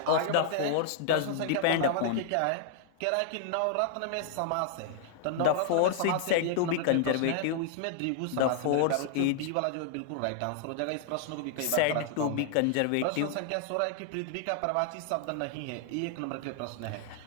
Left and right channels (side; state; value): both; different; correlation -0.01